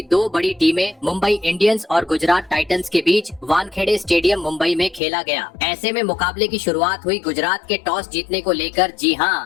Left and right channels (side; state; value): right; drops out; at 5.0 s